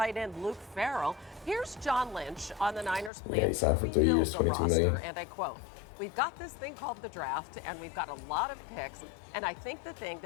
end Luke Farrell. Here's John Lynch on the Niners' Yeah, he plans to signed for 3 years, rebuild the 22 million. roster, and I quote, "We've got this thing called the draft, and we've got a lot of picks, and I think the thing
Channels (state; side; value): drops out; right; at 3.1 s